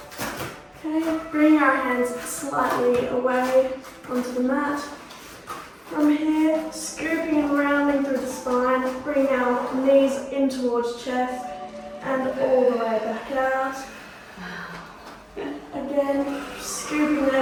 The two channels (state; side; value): identical; both; correlation 1.00